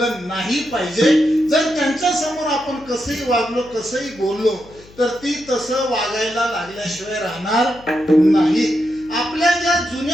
नाही पाहिजे. जर त्यांच्या समोर आपण कसंही वागलो, कसंही बोललो तर ती तसं वागायला लागल्याशिवाय राहणार नाही. आपल्या ज्या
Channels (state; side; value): noise; left; hum, 23 dB below the sound